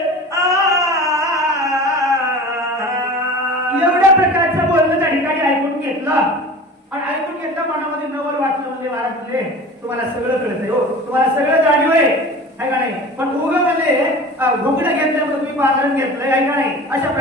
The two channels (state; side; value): normal; both; correlation 0.37